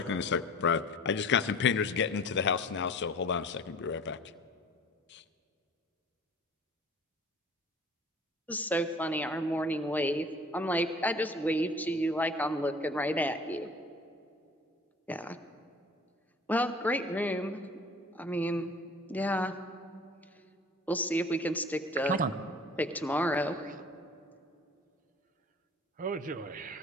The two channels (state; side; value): normal; both; correlation 0.46